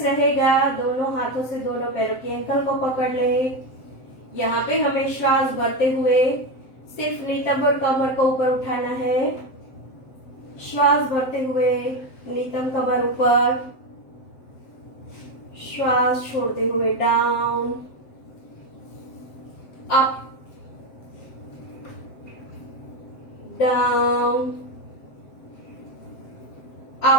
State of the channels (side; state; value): right; late; 7.7 ms